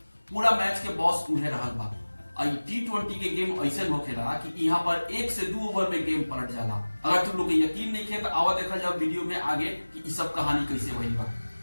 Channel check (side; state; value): both; inverted; correlation -1.00